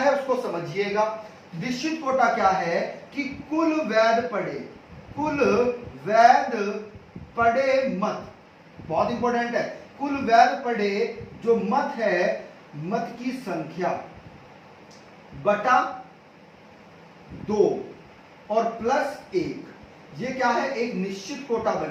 उसको समझिएगा। निश्चित कोटा क्या है? कि कुल वैध पड़े मत, बहुत इंपॉर्टेंट है, कुल वैध पड़े जो मत है, मत की संख्या बटा 2 और प्लस 1, ये क्या है? एक निश्चित कोटा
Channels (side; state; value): both; identical; correlation 1.00